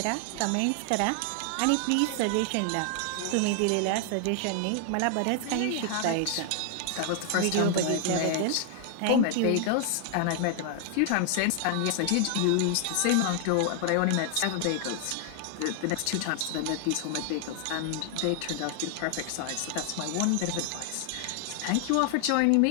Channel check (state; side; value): different; both; correlation 0.00